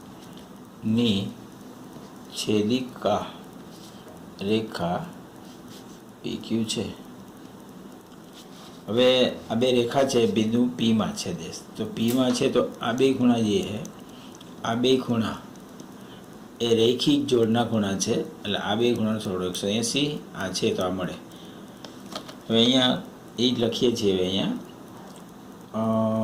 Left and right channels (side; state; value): both; identical; correlation 1.00